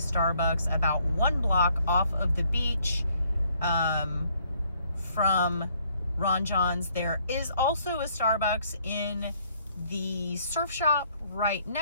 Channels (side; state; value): both; inverted; correlation -0.66